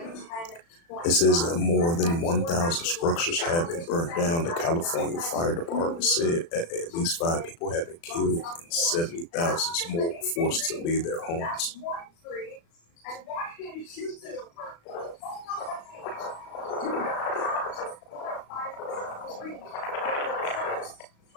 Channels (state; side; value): late; right; 36 ms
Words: It says that more than 1,000 structures have been burnt down. The California Fire Department said at least 5 people have been killed and 70,000 more were forced to leave their homes.